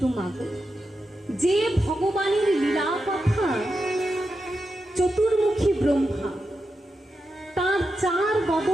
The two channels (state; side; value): normal; both; correlation 0.88